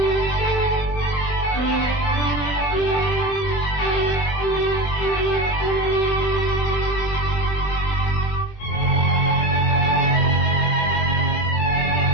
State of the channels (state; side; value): late; right; 21 ms